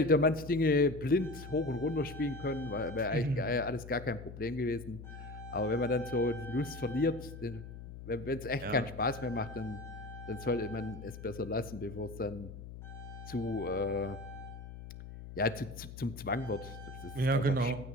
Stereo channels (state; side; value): noise; left; hum, 12 dB below the sound